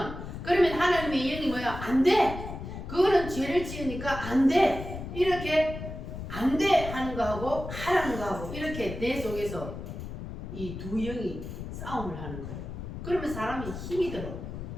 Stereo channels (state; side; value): noise; left; rumble, 8 dB below the sound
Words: 그러면 하나님의 영이 뭐야? 안 돼! 그거는 죄를 지으니까 안 돼! 이렇게 안 돼! 하는 거하고 하라는 거하고 이렇게 내 속에서 이 두 영이 싸움을 하는 거예요. 그러면 사람이 힘이 들어.